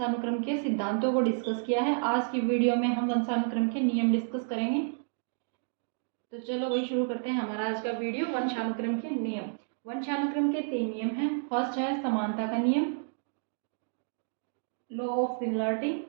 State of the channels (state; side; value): silent; left; digital silence